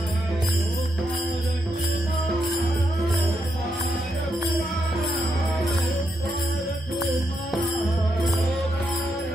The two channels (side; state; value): both; normal; correlation 0.81